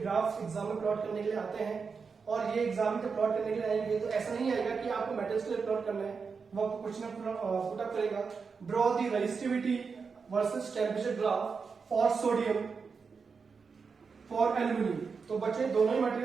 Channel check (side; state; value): left; quieter; 5.3 dB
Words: एग्जाम में प्लॉट करने के लिए आते हैं, और ये एग्जाम में प्लॉट करने के लिए आएंगे तो ऐसा नहीं आएगा कि आपको मेटल्स के लिए प्लॉट करना है, वो आपको क्वेश्चन पुटअप करेगा, draw the resistivity versus temperature graph for sodium for aluminium. तो बच्चे दोनों ही